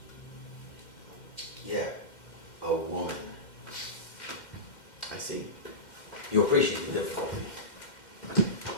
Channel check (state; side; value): late; right; 2.1 ms